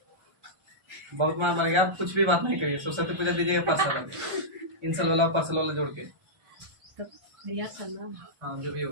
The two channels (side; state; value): left; late; 1.3 ms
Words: बहुत मार मारेगा, आप कुछ भी बात नहीं करिए। सरस्वती पूजा दीजिएगा पार्सल, इंसल वाला जोड़ के। हाँ जो भी